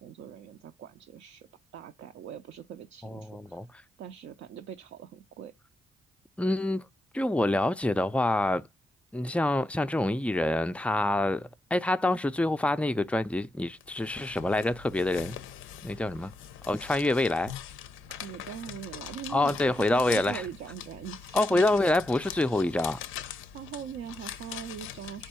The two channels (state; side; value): normal; both; correlation 0.85